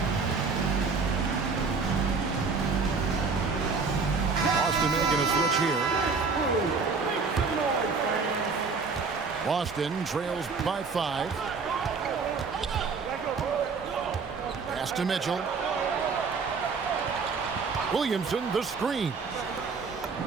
Boston making a switch here. Boston trails by 5. Pass to Mitchell. Williamson, the screen.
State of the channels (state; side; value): quieter; left; 4.8 dB